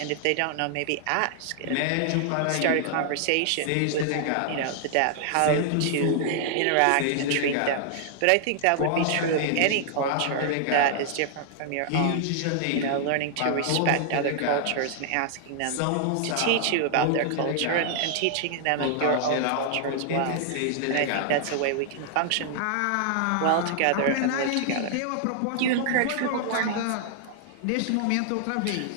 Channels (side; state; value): both; different; correlation -0.01